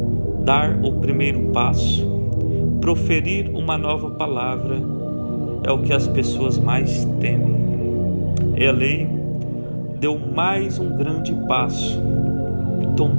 dar o primeiro passo, proferir uma nova palavra, é o que as pessoas mais temem. Ele deu mais um grande passo,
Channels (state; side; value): inverted; both; correlation -1.00